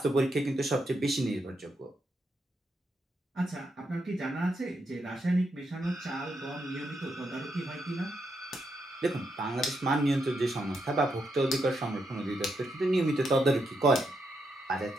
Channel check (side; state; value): both; normal; correlation 0.81